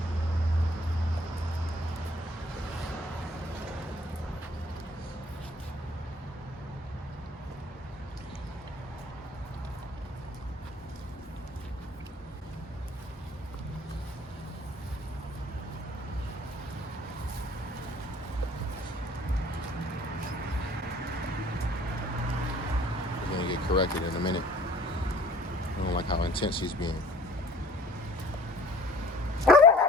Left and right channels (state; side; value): normal; both; correlation 0.52